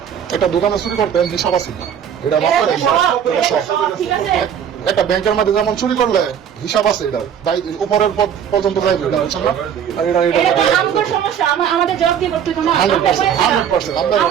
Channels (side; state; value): left; quieter; 8.6 dB